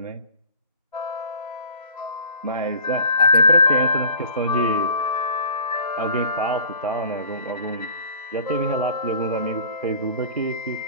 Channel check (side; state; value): both; inverted; correlation -0.47